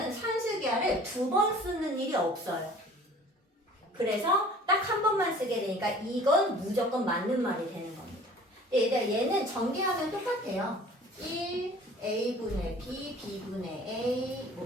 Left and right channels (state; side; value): normal; both; correlation 0.48